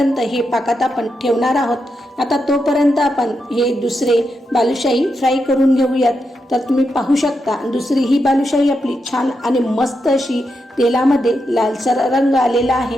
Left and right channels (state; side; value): normal; both; correlation 0.85